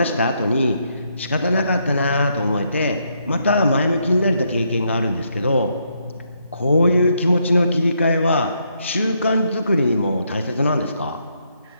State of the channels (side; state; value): both; inverted; correlation -0.76